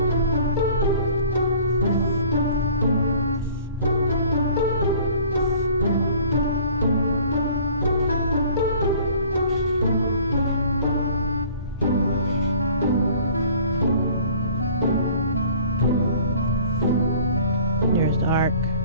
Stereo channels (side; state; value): both; inverted; correlation -0.50